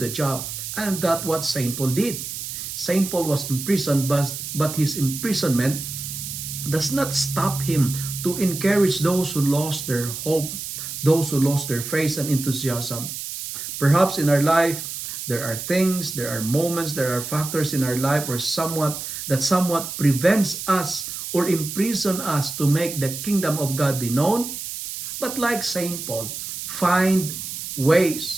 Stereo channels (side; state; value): right; noise; hiss, 7 dB below the sound